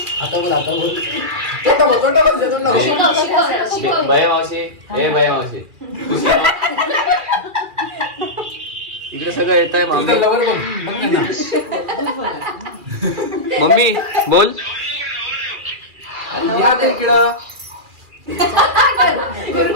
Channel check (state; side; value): late; left; 2.4 ms